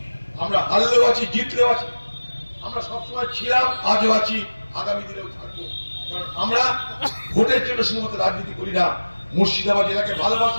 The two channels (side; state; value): both; inverted; correlation -1.00